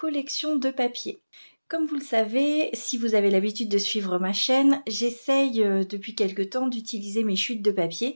de papier. Comme vous le savez, si vous avez l'habitude de suivre ma chaîne, j'essaye depuis quelque temps d'utiliser mes chutes de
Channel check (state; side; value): inverted; both; correlation -1.00